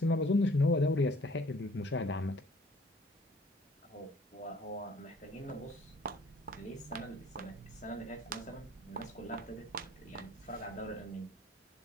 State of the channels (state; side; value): normal; both; correlation 0.55